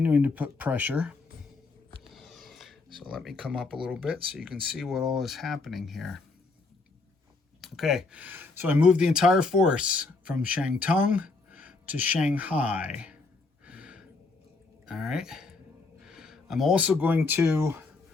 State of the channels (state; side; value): quieter; right; 3.8 dB